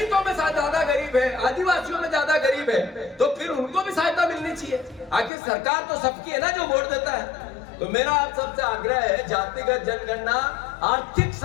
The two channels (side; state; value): right; drops out; at 5.3 s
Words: में ज्यादा गरीब है, आदिवासियों में ज्यादा गरीब है, तो फिर उनको भी सहायता मिलनी चाहिए। आखिर सरकार तो सबकी है ना जो वोट देता है। तो मेरा आप सबसे आग्रह है, जातिगत जनगणना, आर्थिक